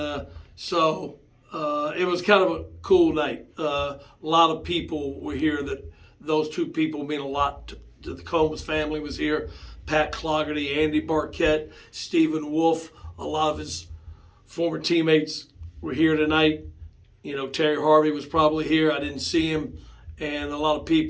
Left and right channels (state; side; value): identical; both; correlation 1.00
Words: so it was kind of a cool night. A lot of people were here. That those two people mean a lot to the Combs family was here. Pat Clougherty, Andy Barquette, Stephen Wolf, a lot of his former teammates were here tonight. Terry Harvey was probably here. I didn't see him, and a lot of